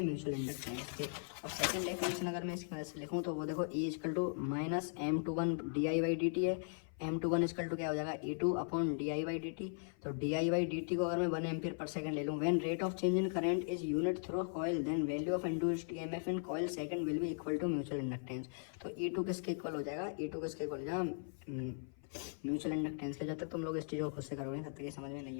म्यूचुअल इंडक्टेंस के। अब सेकंड डेफिनेशन अगर मैं इसकी मदद से लिखूँ तो वो देखो E equal to minus M21 DI/dt है। M21 इक्वल टू क्या हो जाएगा, E2 अपॉन DI/dt। तो DI/dt को अगर मैं 1 एम्पियर पर सेकंड ले लूँ, when rate of change in current is unit through coil then value of induced EMF in coil second will be equal to mutual inductance. तो E2 किसके equal हो जाएगा, E2 किसके इक्वल हो जाएगा, mutual inductance के। जब तक तुम लोग इस चीज़ को खुद से करोगे तब तक ये समझ में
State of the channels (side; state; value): right; silent; 52 dB below the other